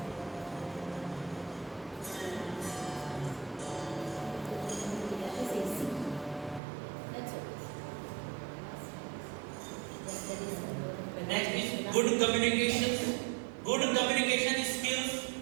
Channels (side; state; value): left; drops out; at 6.6 s